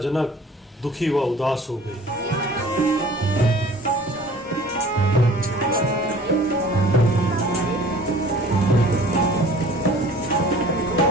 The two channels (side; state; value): both; normal; correlation 0.48